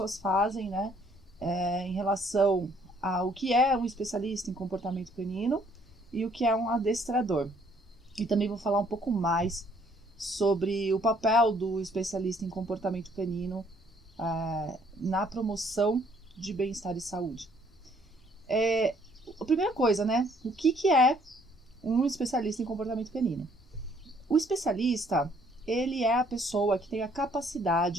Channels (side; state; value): both; normal; correlation 0.64